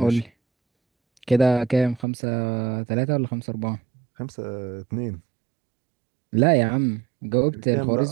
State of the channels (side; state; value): left; drops out; at 2.1 s